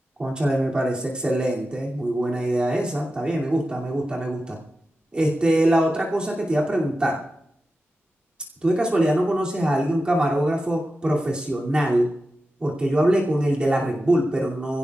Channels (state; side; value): normal; both; correlation 0.92